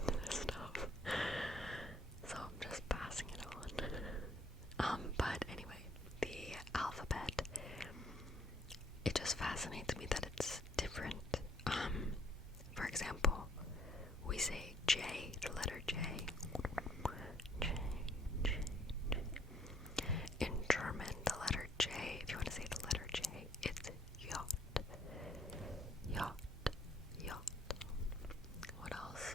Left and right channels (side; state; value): both; normal; correlation 0.63